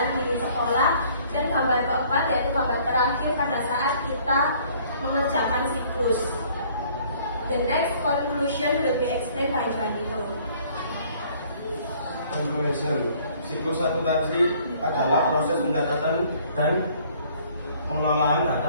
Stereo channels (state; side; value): inverted; both; correlation -0.58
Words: The next conclusion will be explained by Juanito. Conclusion. Siklus akuntansi adalah proses pencatatan dan pengelolaan